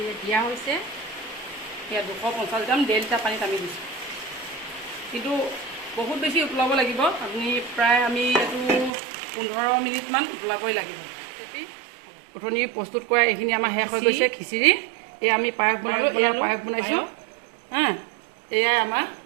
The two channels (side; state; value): left; drops out; at 8.9 s